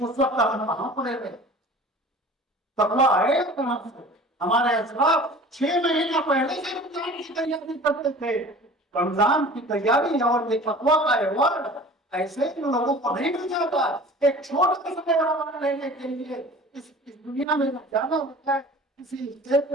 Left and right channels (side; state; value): both; normal; correlation 0.43